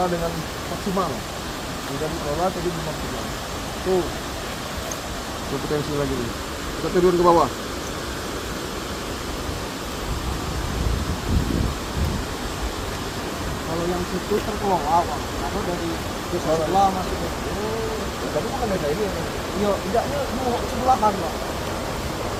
dengan maksimal. Tidak dikelola tapi belum maksimal. Tuh, potensi lagi nih. Kita turun ke bawah. Kalau yang situ terkelola, Bang. Aku dari desa sebelah masuk ke Tapi bukan desa ini. iya, tidaknya sebelahan, Bang.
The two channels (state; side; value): identical; both; correlation 1.00